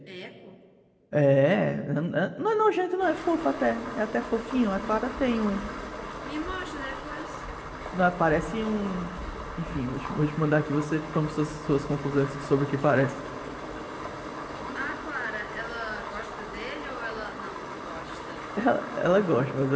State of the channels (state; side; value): identical; both; correlation 1.00